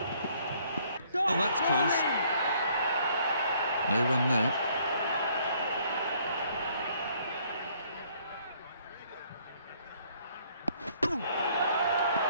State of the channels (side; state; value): both; inverted; correlation -0.63